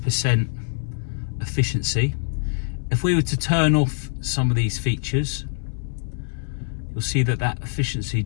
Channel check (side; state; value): right; silent; digital silence